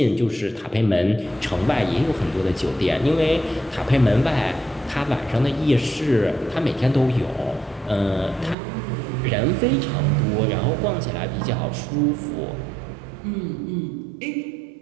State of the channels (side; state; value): left; drops out; at 8.6 s